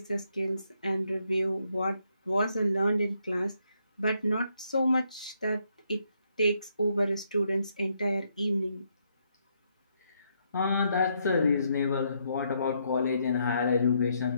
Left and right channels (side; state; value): both; inverted; correlation -0.76